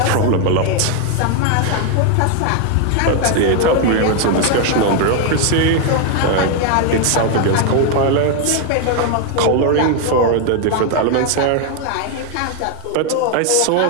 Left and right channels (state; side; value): different; both; correlation 0.01